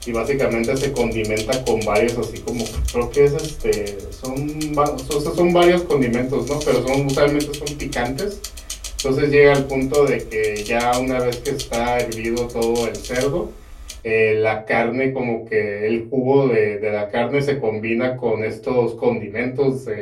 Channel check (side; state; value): both; identical; correlation 1.00